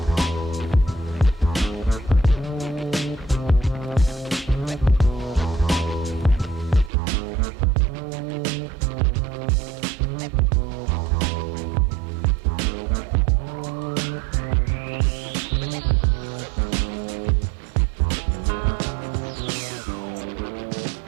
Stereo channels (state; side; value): drops out; left; at 6.9 s